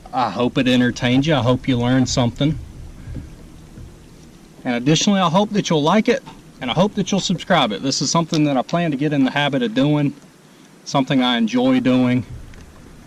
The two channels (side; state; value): both; identical; correlation 1.00